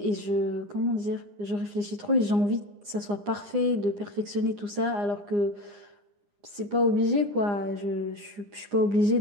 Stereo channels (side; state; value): left; late; 9.8 ms